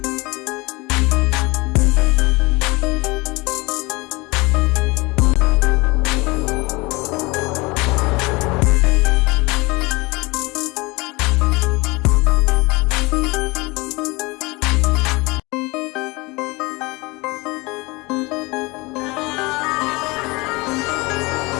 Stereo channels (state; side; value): quieter; right; 24.5 dB